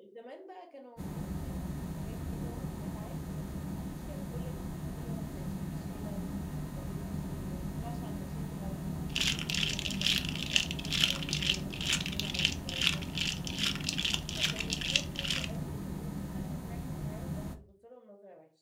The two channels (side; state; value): both; identical; correlation 1.00